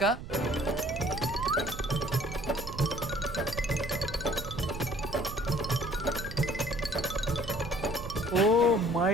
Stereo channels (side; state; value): right; noise; rumble, 10 dB below the sound